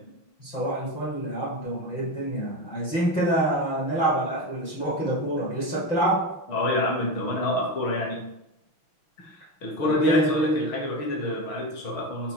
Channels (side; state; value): right; late; 6.1 ms